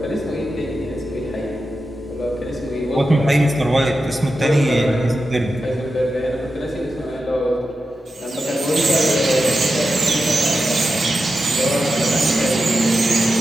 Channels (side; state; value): both; normal; correlation 0.90